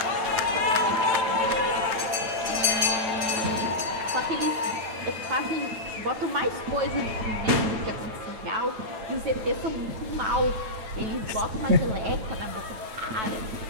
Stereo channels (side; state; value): left; late; 9.0 ms